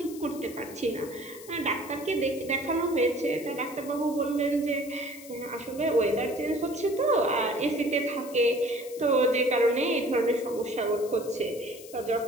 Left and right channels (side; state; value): left; noise; hiss, 17 dB below the sound